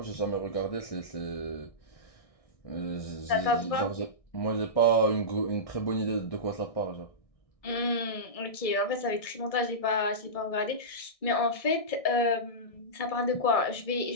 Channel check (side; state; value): right; late; 1.6 ms